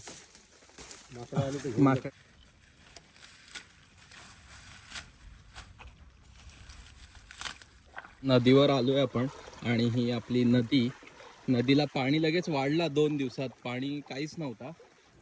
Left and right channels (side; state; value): both; identical; correlation 1.00